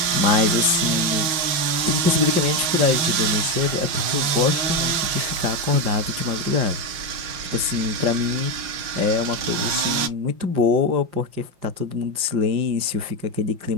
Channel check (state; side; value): late; left; 5.7 ms